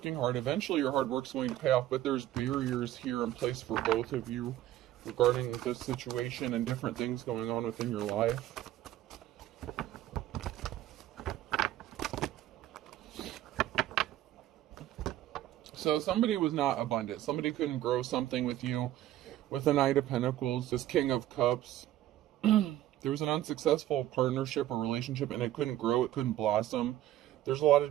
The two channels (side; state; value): left; quieter; 13.6 dB